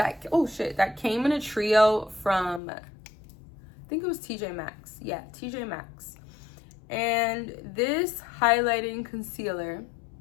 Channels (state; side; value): drops out; right; at 2.6 s